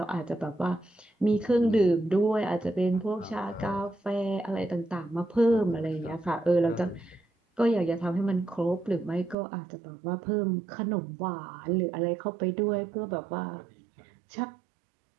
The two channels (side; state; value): left; drops out; at 9.3 s